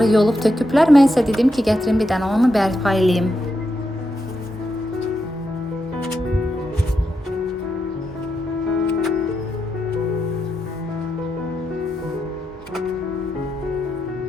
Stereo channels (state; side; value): normal; both; correlation 0.84